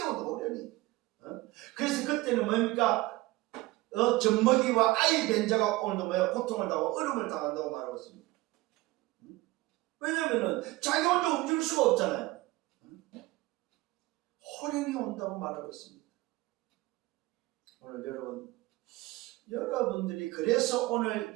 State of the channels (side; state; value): left; quieter; 19.5 dB